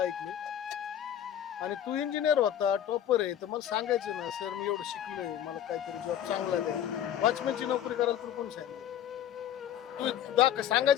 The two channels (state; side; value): quieter; right; 10.4 dB